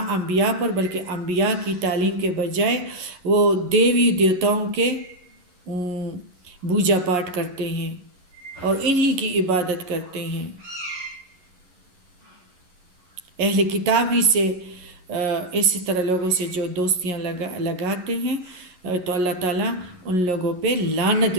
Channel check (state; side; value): late; left; 11 ms